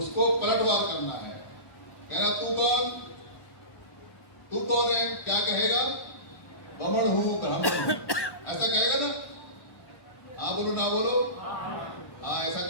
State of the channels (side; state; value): right; late; 1.1 ms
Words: पलटवार करना है। कहना तू कौन, तू कौन है? क्या कहेगा? ब्राह्मण हूं, ब्राह्मण हूं, ऐसा कहेगा ना? हाँ बोलो ना बोलो? हाँ ऐसा